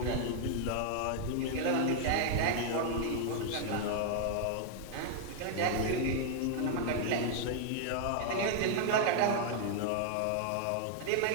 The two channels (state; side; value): different; both; correlation 0.00